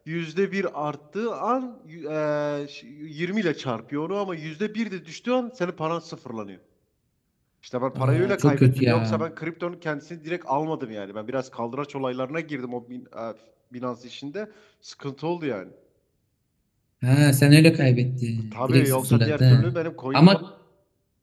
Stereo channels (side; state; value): both; identical; correlation 1.00